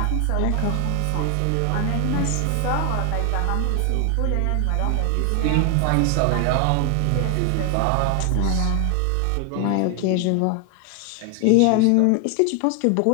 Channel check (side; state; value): both; different; correlation 0.00